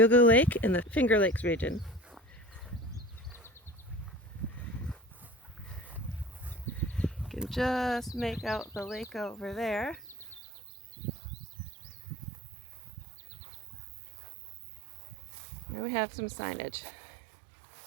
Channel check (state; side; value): drops out; left; at 10.4 s